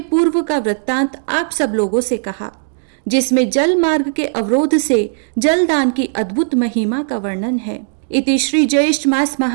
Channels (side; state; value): left; silent; digital silence